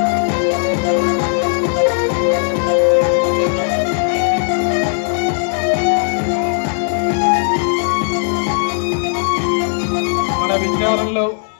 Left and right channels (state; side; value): silent; right; digital silence